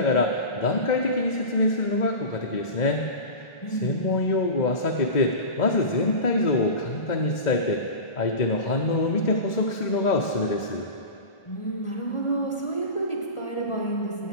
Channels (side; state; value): right; late; 1.4 ms